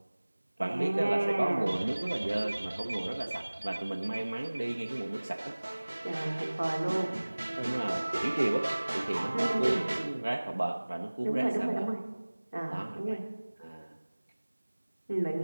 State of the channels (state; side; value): inverted; both; correlation -1.00